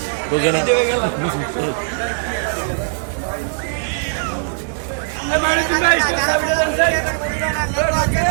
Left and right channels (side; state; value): left; silent; digital silence